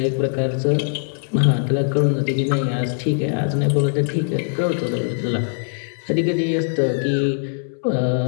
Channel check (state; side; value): silent; right; 65 dB below the other